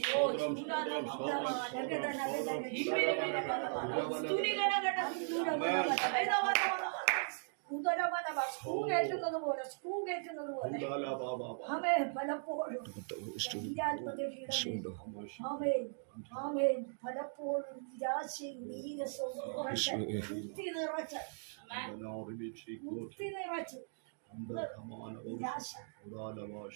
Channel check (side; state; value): left; silent; digital silence